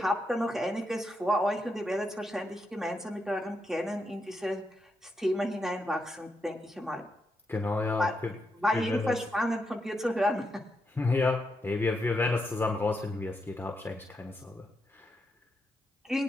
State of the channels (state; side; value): normal; both; correlation 0.83